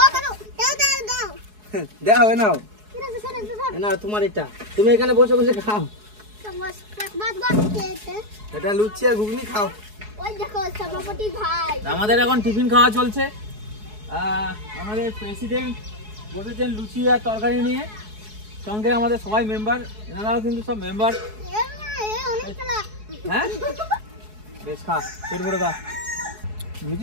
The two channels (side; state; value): left; late; 4.7 ms